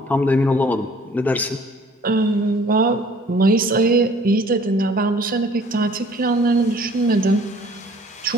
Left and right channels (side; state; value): both; normal; correlation 0.54